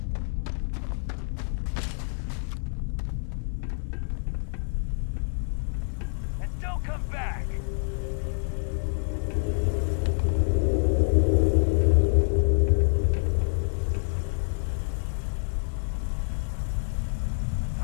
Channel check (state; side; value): silent; right; 60 dB below the other